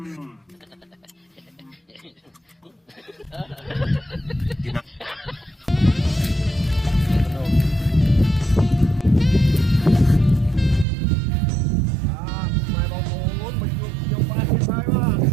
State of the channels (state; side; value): drops out; left; at 10.9 s